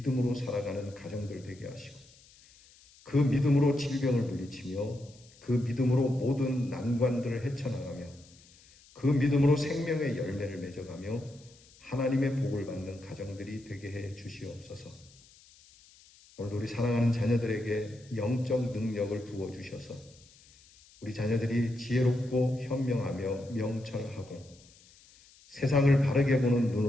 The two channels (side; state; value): left; noise; hiss, 26 dB below the sound